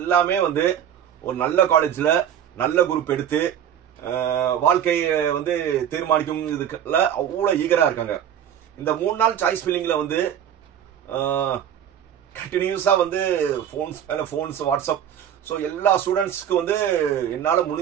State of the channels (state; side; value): quieter; left; 9.6 dB